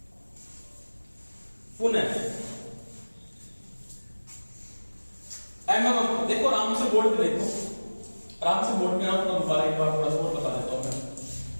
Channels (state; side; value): inverted; both; correlation -1.00